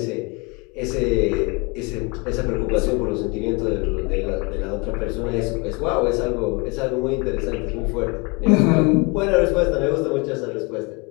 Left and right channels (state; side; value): quieter; right; 28.3 dB